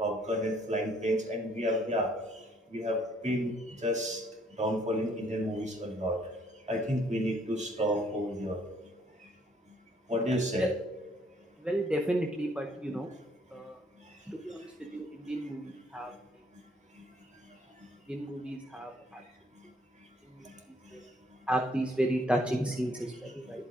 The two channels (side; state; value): both; normal; correlation 0.64